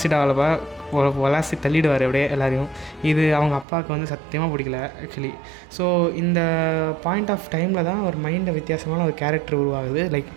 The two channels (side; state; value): left; drops out; at 3.7 s